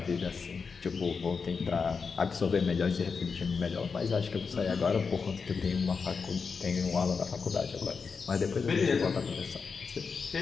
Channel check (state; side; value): quieter; right; 5.3 dB